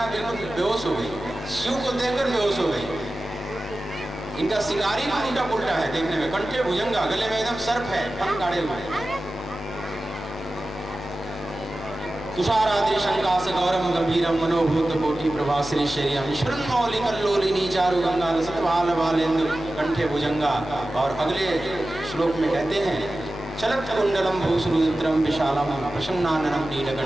बिल्कुल बेहोश हो गई, शिव को देखकर बेहोश हो गई। इनका श्रृंगार ही उल्टा पुल्टा है देखने में, कंठे भुजंगा, गले में एकदम सर्प है, फन काढ़े हुए। तुषाराद्रि शंकास गौरम गंभीरम मनोभूत कोटि प्रभाश्री शरीरम ईश्वरन मौलि कल्लोलिनी चारु गंगा लसत भाल बालेंदु कंठे भुजंगा। और अगले श्लोक में कहते हैं, चलत कुंडलम भूसुरुद्रम विशालम प्रसन्नाननम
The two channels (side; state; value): both; normal; correlation 0.94